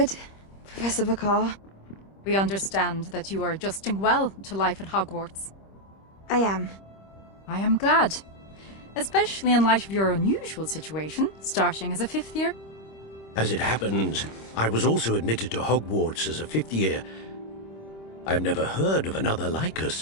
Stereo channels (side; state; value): right; late; 26 ms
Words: Professor McCaw. We understand that you are adjusting well to life at Hogwarts. I am. I am glad. Especially in light of your unusual situation, starting as a 5th year. As it happens, I was also admitted to Hogwarts as a 5th year. I've never heard of another like